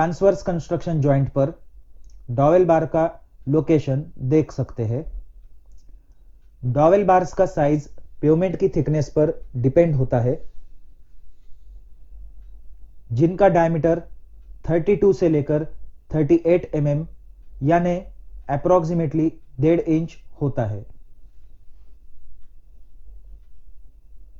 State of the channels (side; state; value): both; identical; correlation 1.00